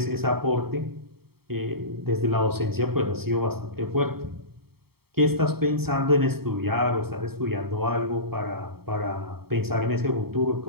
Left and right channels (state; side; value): late; left; 0.95 ms